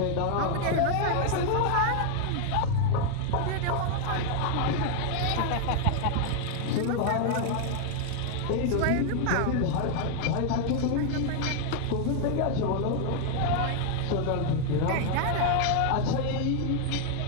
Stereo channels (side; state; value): both; different; correlation 0.00